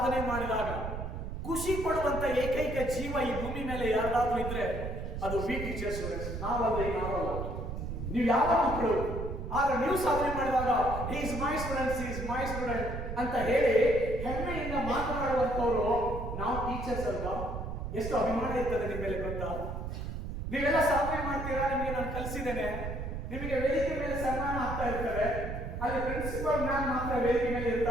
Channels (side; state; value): right; noise; rumble, 5 dB below the sound